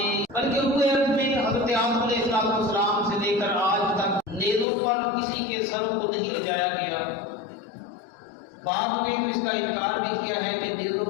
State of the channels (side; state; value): right; drops out; at 4.7 s